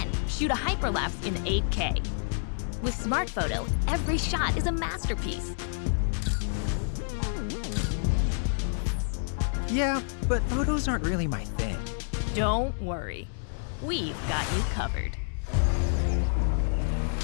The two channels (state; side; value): silent; right; digital silence